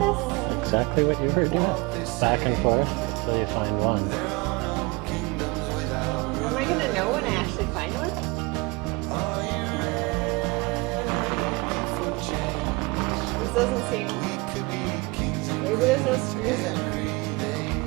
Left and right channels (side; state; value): left; quieter; 25.9 dB